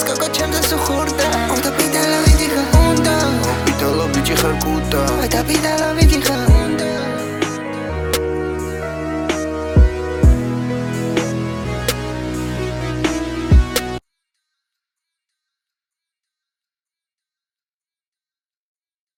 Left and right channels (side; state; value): both; identical; correlation 1.00